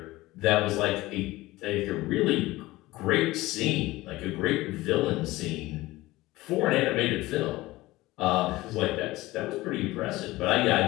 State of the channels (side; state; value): right; quieter; 18.8 dB